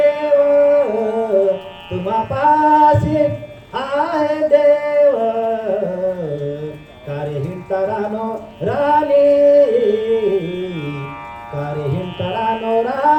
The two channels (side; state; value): both; identical; correlation 1.00